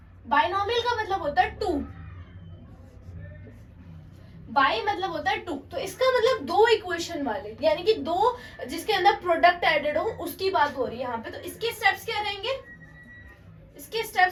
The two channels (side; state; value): both; identical; correlation 1.00